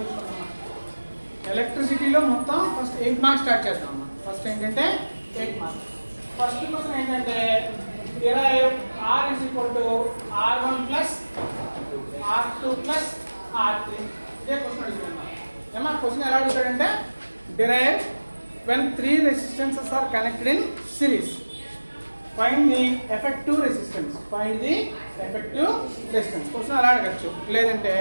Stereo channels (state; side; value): inverted; both; correlation -1.00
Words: ఎలక్ట్రిసిటీలో మొత్తం ఫస్ట్ 8 మార్క్స్ స్టార్ట్ చేస్తాం అమ్మా. ఫస్ట్ ఏంటంటే 8 మార్క్స్. ఫస్ట్ క్వశ్చన్ ఏంటంటే derive R is equal to R1 plus R2 plus R3. ఇదే క్వశ్చన్ అడుగుతున్నాం. ఏమా క్వశ్చన్ ఎలా అడుగుతాడంటే derive when 3 resistances are connected in series. Find the effective resistance. Find the effective resistance. Question అలా అడగచ్చు. లేదంటే